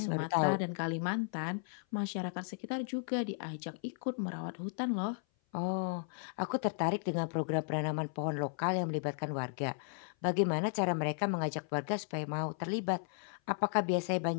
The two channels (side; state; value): right; silent; 54 dB below the other